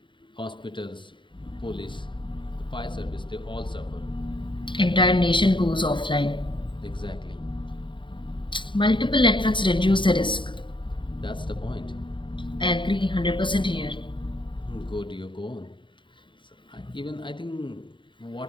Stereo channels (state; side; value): late; right; 0.23 ms